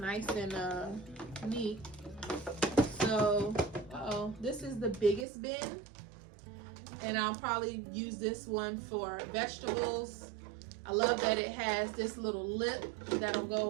and neat. So, this is the biggest bin, and I'll probably use this one for vegetables. I love that it has this little lip that'll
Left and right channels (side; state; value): left; drops out; at 5.2 s